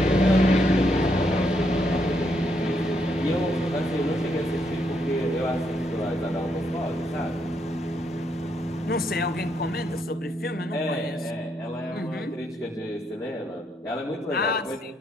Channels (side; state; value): both; normal; correlation 0.76